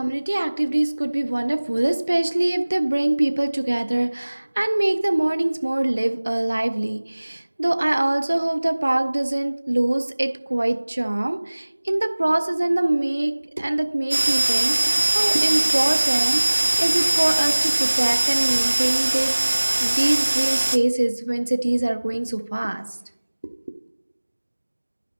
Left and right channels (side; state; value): both; inverted; correlation -1.00